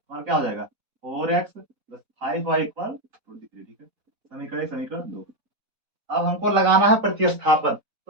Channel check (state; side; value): late; left; 4.1 ms